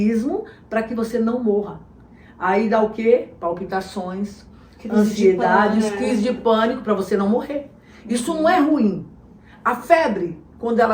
para que você não morra. Aí dá o quê? Palpitações, ansiedades, crise de pânico para você não morrer. Isso não é ruim. A febre, quando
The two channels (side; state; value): both; identical; correlation 1.00